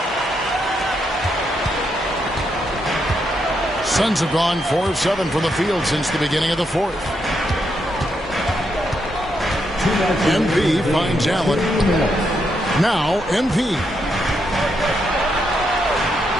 Suns have gone 4 of 7 from the field since the beginning of the fourth. MP finds Allen. Now MP.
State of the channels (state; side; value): normal; both; correlation 0.80